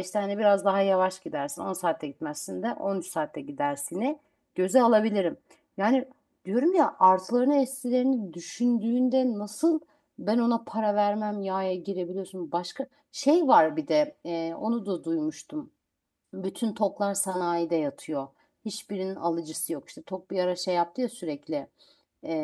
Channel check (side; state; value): both; identical; correlation 1.00